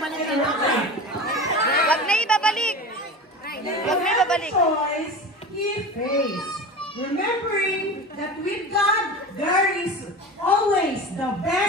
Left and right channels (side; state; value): both; normal; correlation 0.31